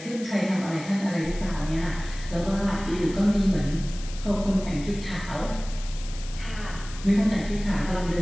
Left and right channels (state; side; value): noise; left; hiss, 15 dB below the sound